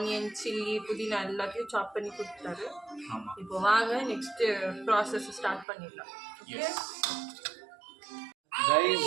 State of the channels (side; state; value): left; drops out; at 5.7 s